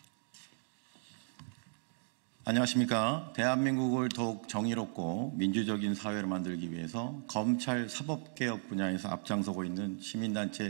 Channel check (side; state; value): left; silent; digital silence